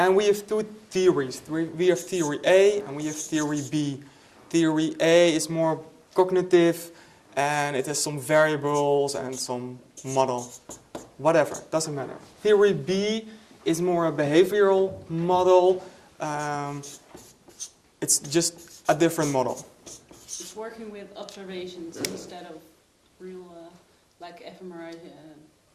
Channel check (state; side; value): identical; both; correlation 1.00